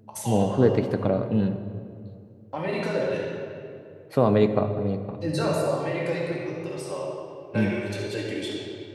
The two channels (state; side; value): identical; both; correlation 1.00